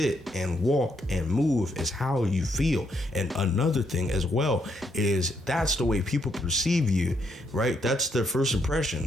and walk and move is how you feel. And another thing as well is that's the way people perceive you, right? That's their first impression.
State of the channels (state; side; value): normal; both; correlation 0.75